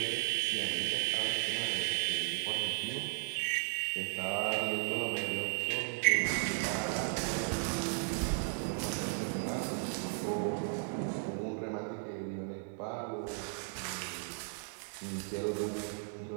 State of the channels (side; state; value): left; silent; 54 dB below the other